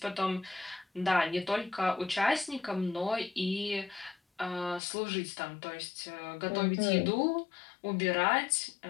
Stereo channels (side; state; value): right; drops out; at 4.8 s